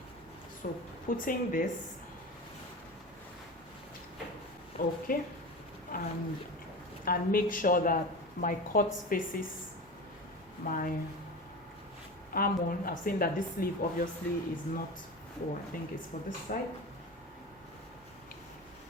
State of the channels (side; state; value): both; normal; correlation 0.29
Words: So putting this, okay, and make sure that my cut faces my arm on. I've seen that this sleeve obviously is not for, I think it's for this side.